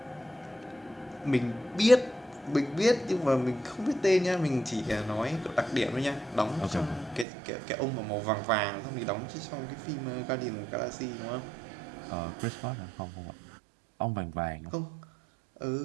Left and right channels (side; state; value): left; drops out; at 7.2 s